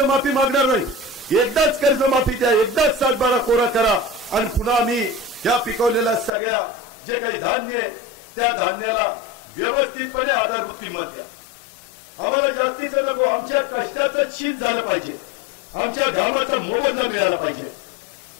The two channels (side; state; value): right; drops out; at 6.3 s